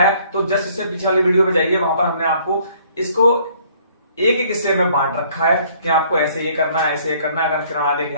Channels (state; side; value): inverted; both; correlation -0.61